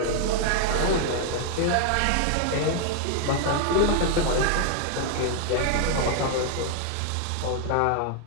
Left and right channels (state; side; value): different; both; correlation 0.00